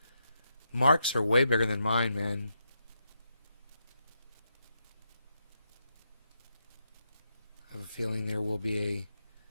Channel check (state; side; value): inverted; both; correlation -0.83